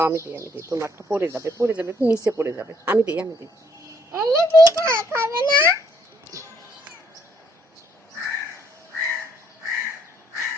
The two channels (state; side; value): normal; both; correlation 0.68